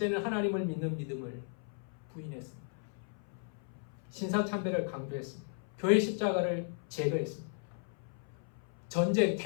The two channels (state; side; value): silent; right; 54 dB below the other